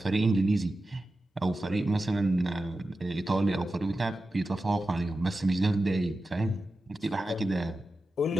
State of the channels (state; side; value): normal; both; correlation 0.93